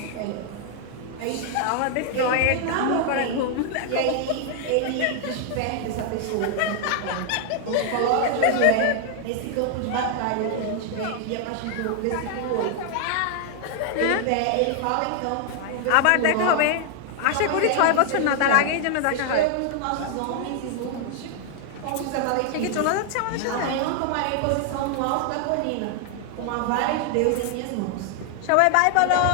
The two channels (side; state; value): both; different; correlation 0.00